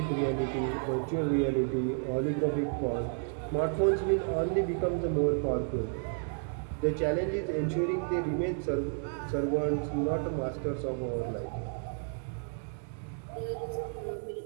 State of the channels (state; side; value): silent; left; 57 dB below the other